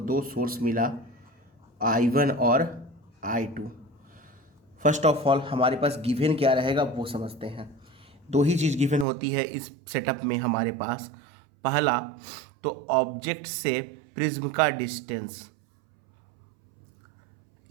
सोर्स मिला I1 और I2। फर्स्ट ऑफ ऑल हमारे पास गिवन क्या रहेगा वो समझते हैं। दो ही चीज़ गिवन होती है इस सेटअप में हमारे पास। पहला तो ऑब्जेक्ट से प्रिज्म का डिस्टेंस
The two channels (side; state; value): left; drops out; at 9.1 s